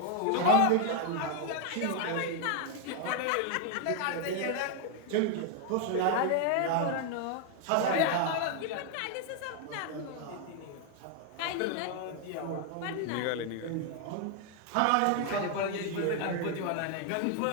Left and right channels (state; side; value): different; both; correlation 0.01